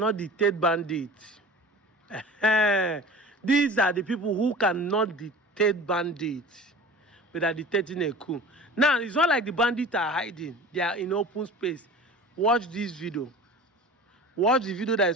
dictate bandits. These are the people who cannot dictate bandits, but are dictating a coup. Now, it's not like the bandits are hiding. They are in open space. Watch this video. Watch the video that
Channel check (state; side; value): normal; both; correlation 0.38